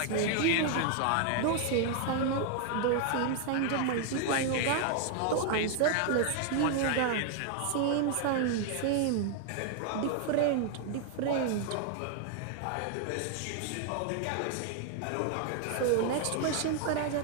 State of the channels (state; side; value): different; both; correlation 0.00